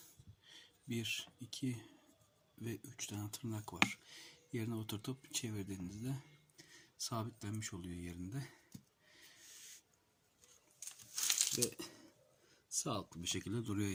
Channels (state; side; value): identical; both; correlation 1.00